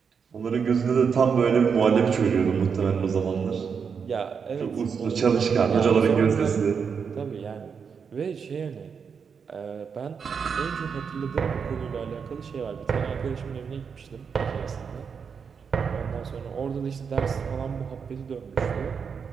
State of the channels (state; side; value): quieter; left; 6.3 dB